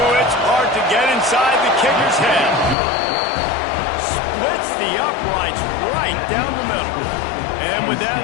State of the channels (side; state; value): right; drops out; at 2.8 s